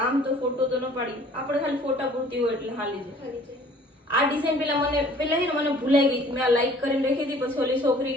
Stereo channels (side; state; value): both; normal; correlation 0.53